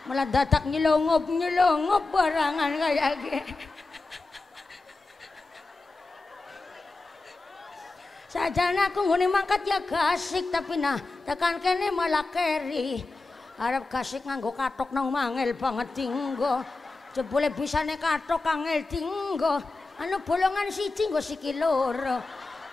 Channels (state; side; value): quieter; right; 3.5 dB